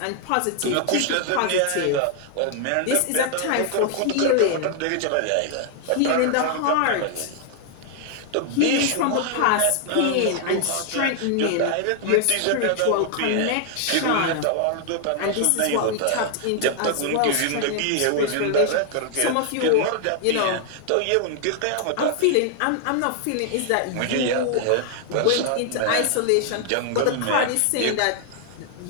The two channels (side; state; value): both; different; correlation 0.00